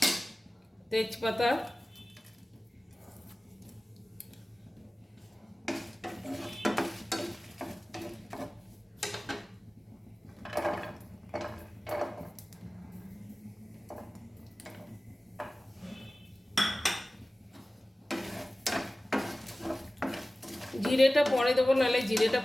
তেজপাতা, জিরেটা পরে দেবো, নাহলে জিরেটা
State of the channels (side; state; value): both; normal; correlation 0.97